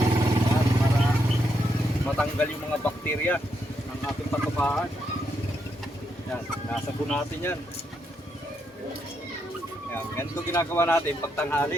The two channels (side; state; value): both; normal; correlation 0.79